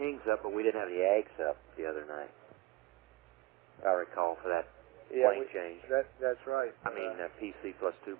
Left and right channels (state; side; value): quieter; left; 20.2 dB